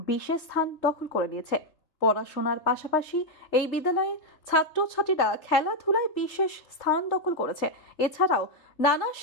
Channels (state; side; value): late; right; 3.4 ms